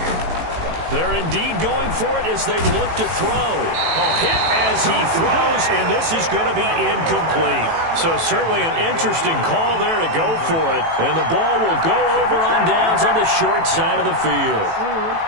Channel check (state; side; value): late; left; 18 ms